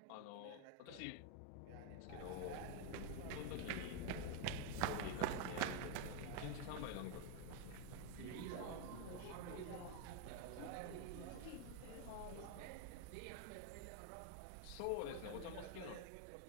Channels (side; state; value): both; different; correlation 0.00